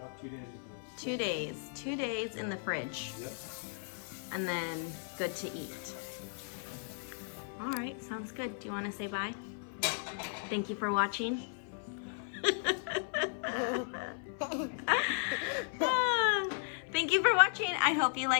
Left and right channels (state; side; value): silent; right; 54 dB below the other